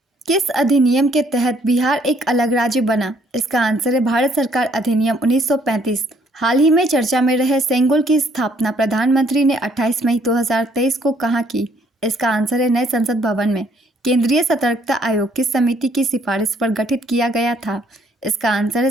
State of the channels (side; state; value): both; normal; correlation 0.65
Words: किस अधिनियम के तहत बिहार एक अलग राज्य बना? इसका आंसर है भारत सरकार अधिनियम 1935। हाल ही में चर्चा में रहे सेंगोल की स्थापना प्रधानमंत्री ने 28 मई 2023 को कहाँ की? इसका आंसर है नए संसद भवन में। केंद्रीय सतर्कता आयोग किस समिति की सिफारिश पर गठित किया गया था? इसका आंसर है